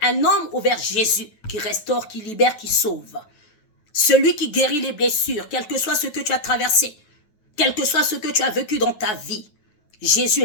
un homme ou vers Jésus qui restaure, qui libère, qui sauve? Celui qui guérit les blessures, quel que soit ce que tu as traversé, quel que soit ce que tu as vécu dans ta vie. Jésus est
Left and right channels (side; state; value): right; late; 9.4 ms